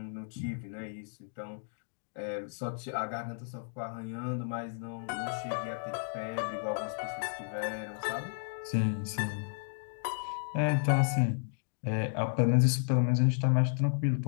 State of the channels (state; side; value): silent; right; digital silence